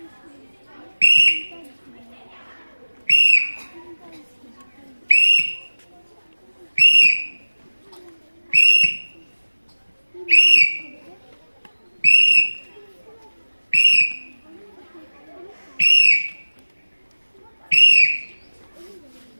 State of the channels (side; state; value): both; inverted; correlation -1.00